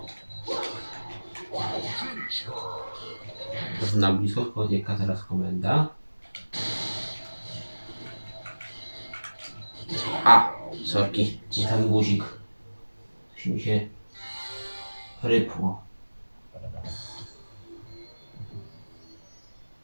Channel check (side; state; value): both; inverted; correlation -1.00